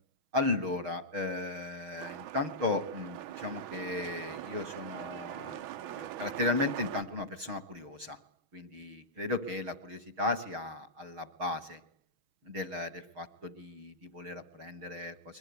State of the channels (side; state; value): left; late; 6.3 ms